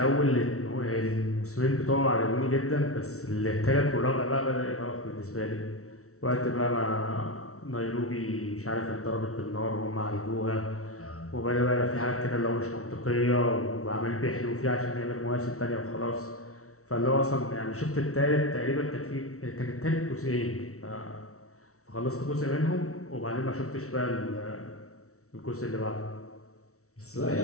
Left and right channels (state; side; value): late; right; 0.64 ms